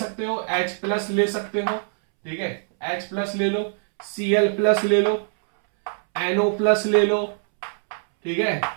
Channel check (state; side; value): silent; left; 63 dB below the other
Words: हो, H+ ले सकते हो, ठीक है, H+ ले लो, Cl+ ले लो, NO+ ले लो, ठीक है।